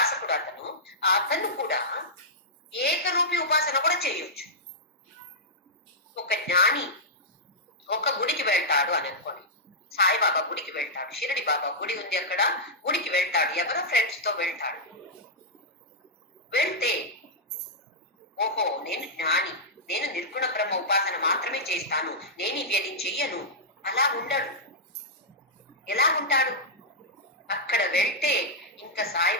అతను కూడా ఏకరూపి ఉపాసన కూడా చేయొచ్చు. ఒక జ్ఞాని ఒక గుడికి వెళ్తాడు అని అనుకోని, సాయిబాబా గుడికి వెళ్తాడు, షిరిడి బాబా గుడి ఉంది అక్కడ, గుడికి వెళ్తాడు, ఎవరో ఫ్రెండ్స్ తో వెళ్తాడు. వెళ్తే ఓహో నేను జ్ఞాని, నేను నిర్గుణ బ్రహ్మ ఉపాసన మాత్రమే చేస్తాను, నేను ఇవి చెయ్యను, అలా ఉండడు. ఎలా ఉంటాడు? అక్కడ వెళ్తే ఇంకా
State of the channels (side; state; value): both; normal; correlation -0.10